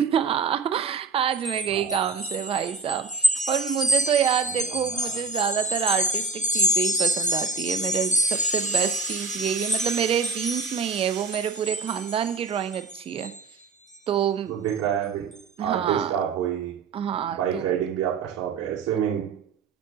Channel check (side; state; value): left; quieter; 4.7 dB